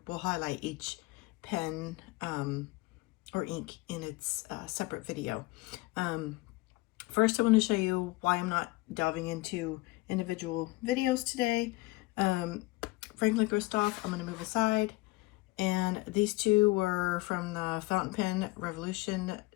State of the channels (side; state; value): right; quieter; 21.3 dB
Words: we'll highlight each pen or ink in its separate video. First, I want to show you why I'm not delving into individual videos today. Franklin-Christoph, I'm going to move aside. And these two were from the Fountain Pen Revolution